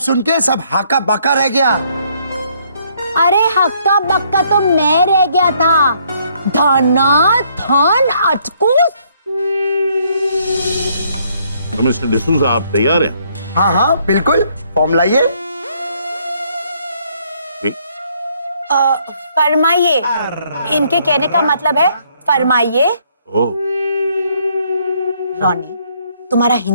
के सब हाका बाका रह गया। अरे हक्का बक्का तो मैं रह गया था। धना धन अटकूस। तो मिस्टर डिसूजा आप तैयार हैं? हाँ हाँ बिल्कुल, फॉर्म लाइए। फरमाइए, इनके कहने का मतलब है फरमाइए। रॉनी, तुम्हारा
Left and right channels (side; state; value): both; inverted; correlation -0.68